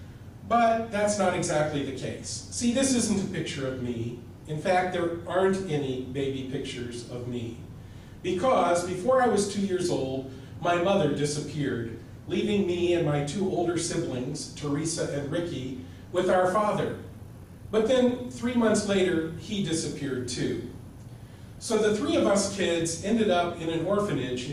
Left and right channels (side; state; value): both; identical; correlation 1.00